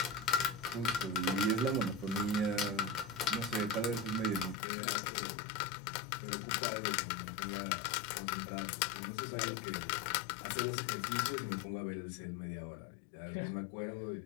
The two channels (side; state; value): right; drops out; at 4.5 s